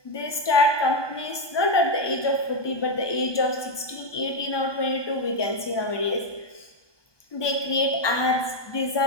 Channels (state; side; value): late; right; 1.2 ms